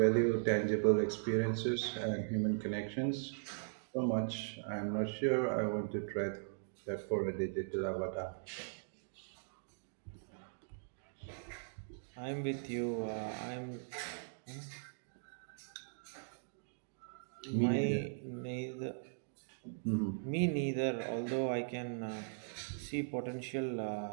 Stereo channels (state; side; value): silent; left; digital silence